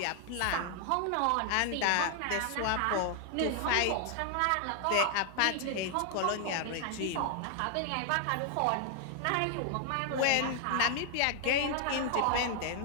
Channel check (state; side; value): different; both; correlation 0.00